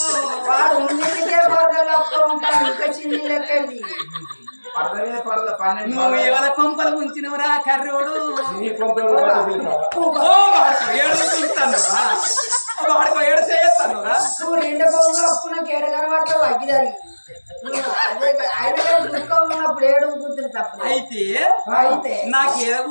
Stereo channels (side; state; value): both; inverted; correlation -1.00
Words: నువ్వు ఎవరి కొంపలు ఉంచినవురా కర్రోడు ఏడుస్తాను వాడికో ఏడు చేస్తాను నువ్వు రెండు పోగా అప్పుడు నాకు ఏడు కనబడతావు అగ్గిదారి అయితే నాకు ఏదో